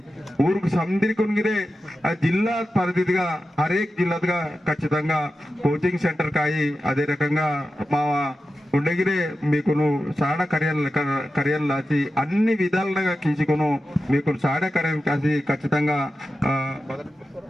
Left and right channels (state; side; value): normal; both; correlation 0.92